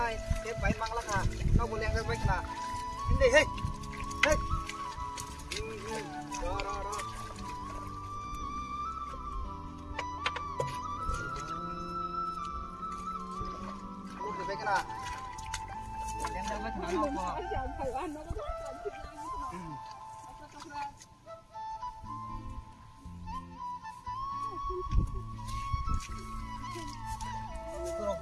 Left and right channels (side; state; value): both; identical; correlation 1.00